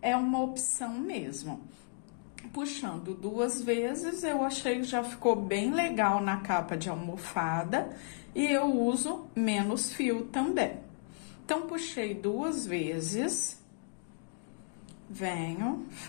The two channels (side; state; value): right; silent; digital silence